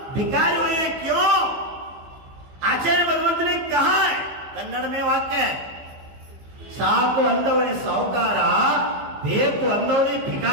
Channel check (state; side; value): late; left; 15 ms